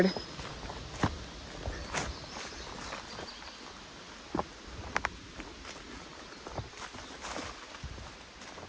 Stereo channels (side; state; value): both; identical; correlation 1.00